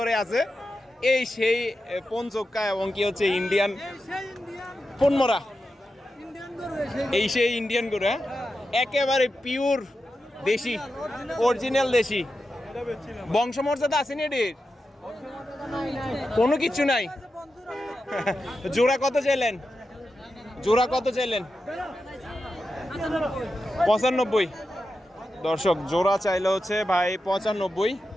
আছে। এই সেই পঞ্চক্কা এবং কি হচ্ছে ইন্ডিয়ান পনমরা, এই সেই ইন্ডিয়ান গরু। হ্যাঁ, একেবারে পিওর দেশি, অরিজিনাল দেশি। বংশমর্যাদা আসেনি এটির? কোনো কিচ্ছু নাই। জোড়া কত চাইলেন? জোড়া কত চাইলেন? 95। দর্শক, জোড়া চাইলে হচ্ছে ভাই 95।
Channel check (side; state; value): both; normal; correlation 0.90